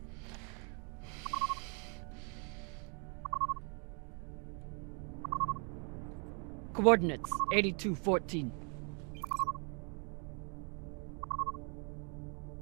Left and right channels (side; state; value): left; quieter; 37.7 dB